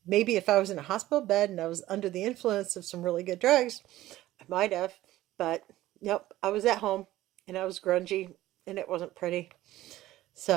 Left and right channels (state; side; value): quieter; left; 15.5 dB